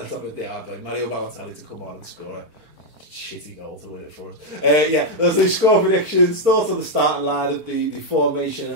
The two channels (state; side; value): late; left; 4.4 ms